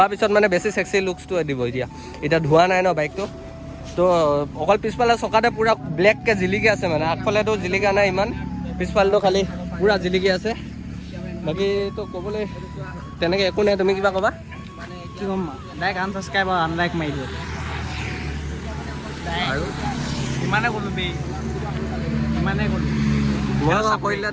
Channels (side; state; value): both; identical; correlation 1.00